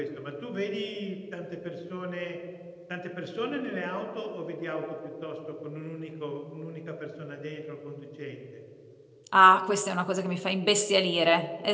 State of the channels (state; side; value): identical; both; correlation 1.00